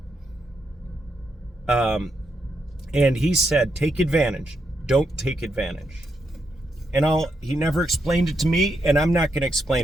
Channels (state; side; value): normal; both; correlation 0.81